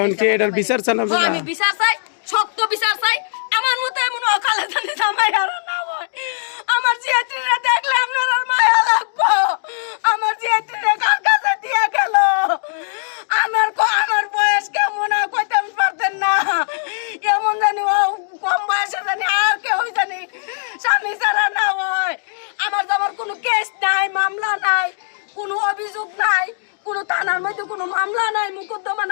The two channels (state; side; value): silent; right; digital silence